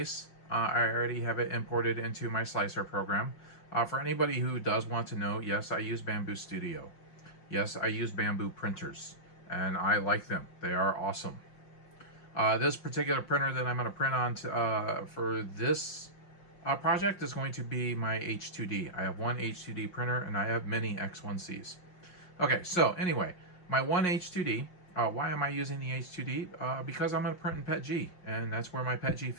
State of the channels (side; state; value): right; late; 5.6 ms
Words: I already have it imported into my slicer program. For anybody who does want to know, yes, I use Bamboo Studio. Yes, I use Bamboo printers, and I like them. They are awesome. This particular printer that I'm going to print on for this project is going to be my H2D. I have one H2D printer, and I have many X1Cs. Okay, so anyway, my one H2D, why am I using the H2D? Because I'm going to print in PETG, and that's where my PETG